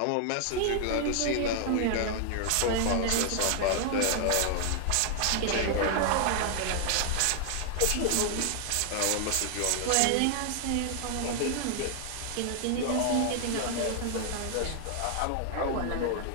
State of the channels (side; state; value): both; different; correlation 0.00